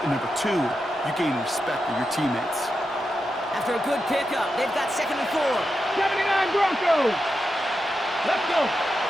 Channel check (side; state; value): both; normal; correlation 0.88